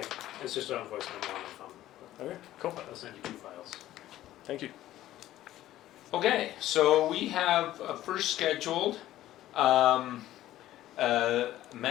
it's just on voice memo on the phone. Okay, cool. I'll send you 2 files. Thank you. Okay, so we have first scheduled MAG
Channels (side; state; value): right; quieter; 14.1 dB